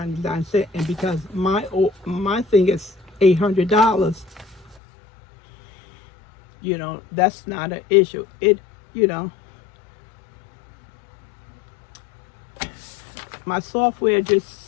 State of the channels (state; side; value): drops out; right; at 4.8 s